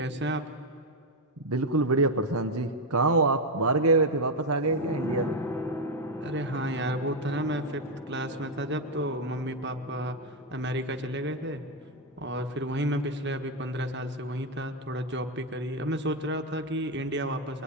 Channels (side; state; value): both; normal; correlation 0.05